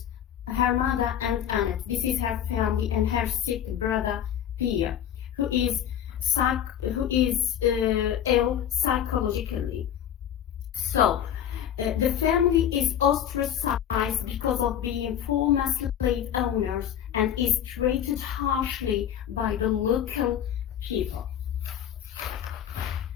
her mother and Annette. This is her family, and her sick brother Pierre, who is ill psychologically. So, the family is ostracized because of being former slave owners and is treated harshly by the local people.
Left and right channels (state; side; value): quieter; right; 9.9 dB